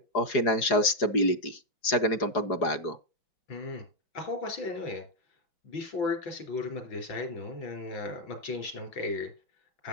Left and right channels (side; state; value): right; late; 4.8 ms